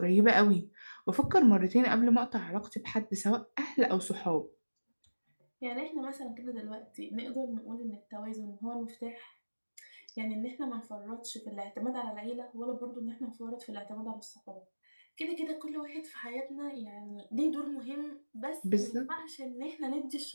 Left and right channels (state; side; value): inverted; both; correlation -1.00